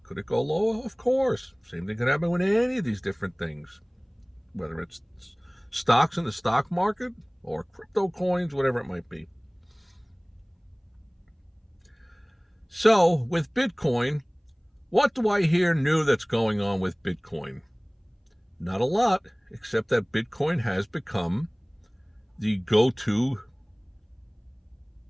Could it go lower? Of course. Same thing could happen with any of these different things, whether it's stocks in the stock market or crypto coins, whatever it might be. So with Bitcoin, what do I hear new that's going on with Bitcoin? Not a lot, except that Bitcoin has become the go-to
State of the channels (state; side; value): identical; both; correlation 1.00